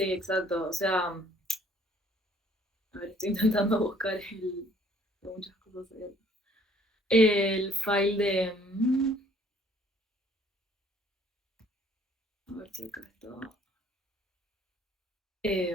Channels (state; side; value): normal; both; correlation 0.60